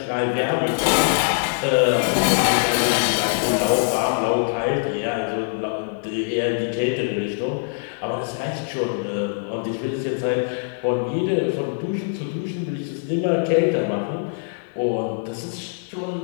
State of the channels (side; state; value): right; silent; digital silence